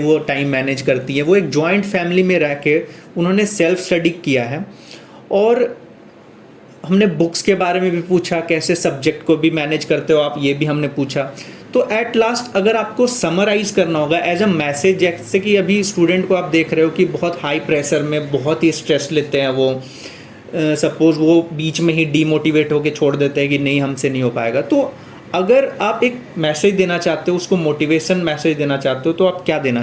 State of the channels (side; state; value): both; identical; correlation 1.00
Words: टाइम मैनेज करती है, वो एक जॉइंट फैमिली में रह के उन्होंने सेल्फ स्टडी किया है। और हमने बुक्स के बारे में भी पूछा, कैसे सब्जेक्ट को भी मैनेज करते हो आप, ये भी हमने पूछा। तो एट लास्ट अगर आपको समराइज़ करना होगा एज अ मैसेज, जैसे कि अभी स्टूडेंट को आप देख रहे हो कि बहुत हाई प्रेशर में बहुत ही स्ट्रेस लेते हैं, वो सपोज़ वो बीच में ही डीमोटिवेट होकर छोड़ देते हैं कि नहीं हमसे नहीं हो पाएगा। तो अगर आप एक मैसेज देना चाहते हो, उसको मोटिवेशन मैसेज देना चाहते हो, तो आप क्या देना